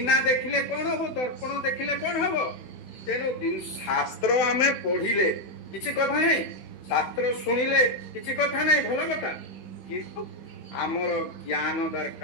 देखिले कोन हबो दर्पण देखिले कोन हबो तेनु दिन शास्त्र आमे पढिले किछि कथा नै शास्त्र सुनिले किछि कथा नै भलो कथा किंतु हमर ज्ञान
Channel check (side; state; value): right; late; 15 ms